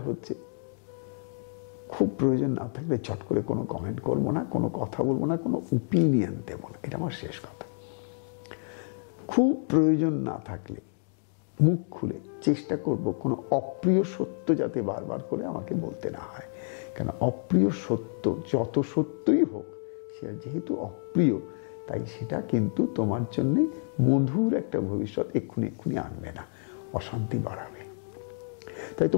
হচ্ছে খুব প্রয়োজন না থাকলে চট করে কোনো কমেন্ট করবো না, কোনো কথা বলবো না, কোনো ওপিনিয়ন দেবো না, এটা আমার শেষ কথা। খুব প্রয়োজন না থাকলে মুখ খুলে চেষ্টা করব কোনো অপ্রিয় সত্য যাতে বারবার করে আমাকে বলতে না হয়। কেন অপ্রিয় সত্য যত সত্যই হোক, সে যেহেতু অপ্রিয়, তাই সেটা কিন্তু তোমার জন্য মধুর একটা ভবিষ্যৎ এক্ষুনি আনবে না, অশান্তি বাড়াবে। তাই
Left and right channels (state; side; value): silent; right; 59 dB below the other